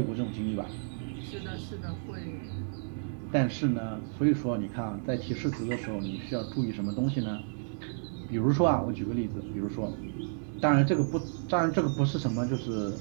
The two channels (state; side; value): silent; left; 57 dB below the other